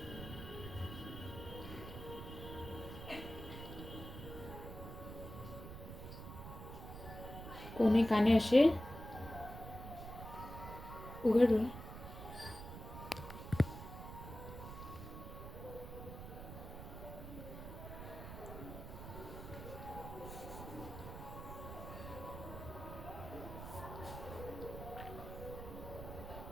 कोणे काने असे उघड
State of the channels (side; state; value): right; noise; rumble, 10 dB below the sound